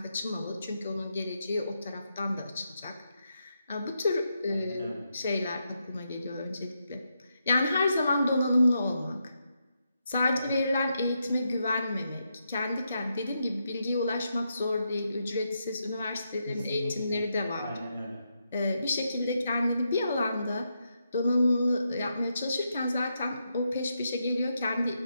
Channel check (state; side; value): inverted; both; correlation -0.83